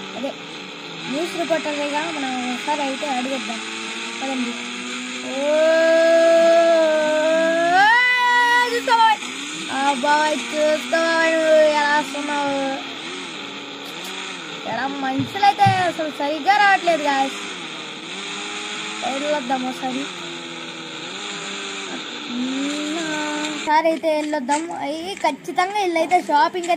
అదే న్యూస్ రిపోర్టర్గా మనం ఒకసారి అయితే అడిగిద్దాం. పదండి. బాబాయ్ చూస్తావా ఎలా వస్తున్నావు? ఎలా మనుషులైతే అసలు సరిగ్గా రావట్లేదు గాయస్. వెళ్ళొద్దాం ఒకసారి అయితే వెళ్ళొద్దాం. అవి ఖచ్చితంగా వీళ్ళైతే షాపింగ్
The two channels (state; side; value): identical; both; correlation 1.00